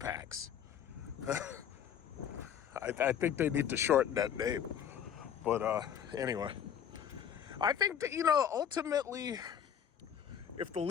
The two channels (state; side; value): quieter; right; 8.7 dB